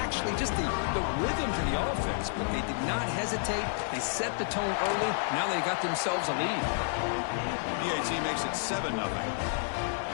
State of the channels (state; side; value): silent; right; digital silence